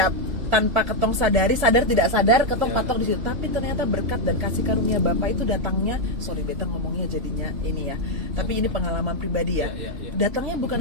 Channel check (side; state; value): left; late; 3.0 ms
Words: tanpa ketong sadar tidak sadar ketong patok di situ. Tapi ternyata berkat dan kasih karunia Bapa itu datangnya, sorry beta ngomongnya jadinya ini ya. Tapi ini pengalaman pribadi ya. Datangnya bukan